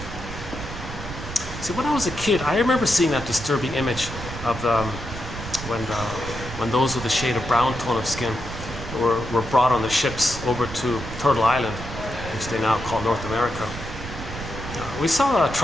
see, when I was a kid, I remember seeing that disturbing image of when those with a shade of brown tone of skin were brought on the ships over to Turtle Island, which they now call North America. We saw a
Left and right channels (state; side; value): noise; right; rumble, 9 dB below the sound